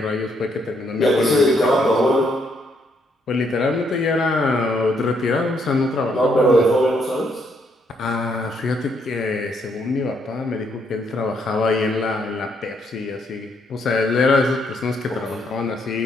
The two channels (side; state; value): both; normal; correlation 0.73